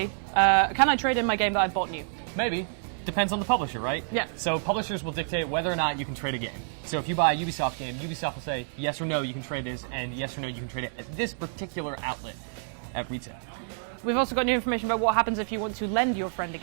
trade in my game that I've bought new? Maybe. Depends on the publisher, right? Yeah. So publishers will dictate whether or not you can trade a game. So if you buy a Ubisoft game, Ubisoft will say yes or no, you can trade this, and yes or no, you can trade it at this particular outlet at retail. We've also got new information about what happens if you want to lend your friend a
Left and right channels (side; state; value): left; silent; 59 dB below the other